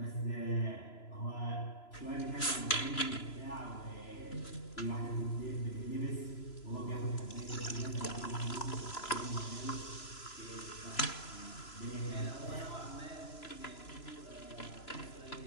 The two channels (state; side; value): late; right; 3.0 ms